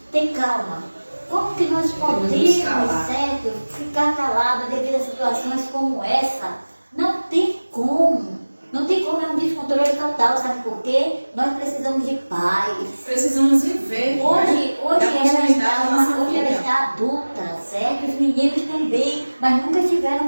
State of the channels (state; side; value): inverted; both; correlation -1.00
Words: ter calma? Como que nós podemos, certo, ficar calados devido a situações como essa? Não tem como. Não tem como, é um descontrole total, sabe por quê? Nós precisamos de paz. Precisamos viver. Hoje hoje ela está adulta, certo? Os meninos também, mas nunca